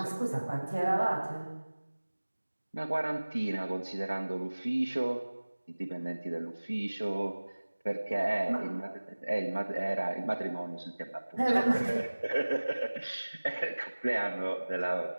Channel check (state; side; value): inverted; both; correlation -1.00